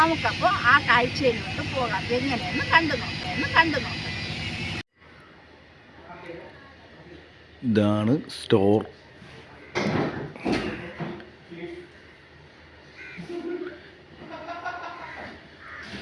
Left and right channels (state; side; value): identical; both; correlation 1.00